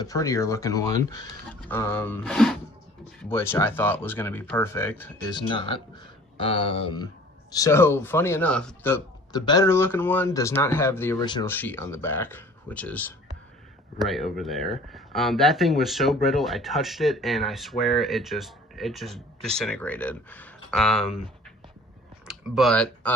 prettier looking one, which I thought was going to be perfect, is not. So funny enough, the better looking one does not have the original sheet on the back, which is right over there. That thing was so brittle, I touched it and I swear it just disintegrated. But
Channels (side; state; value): both; normal; correlation 0.49